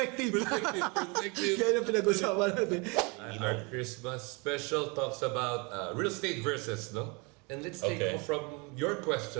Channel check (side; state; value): left; quieter; 29.8 dB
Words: Perspective. Kaya yung pinag-usapan natin. Our Christmas special talks about real estate versus, no? And let's take Okay. off from your